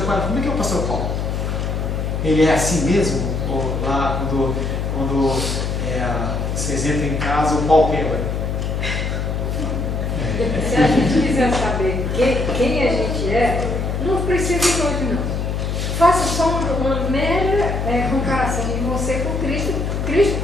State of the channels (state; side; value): noise; left; hum, 1 dB below the sound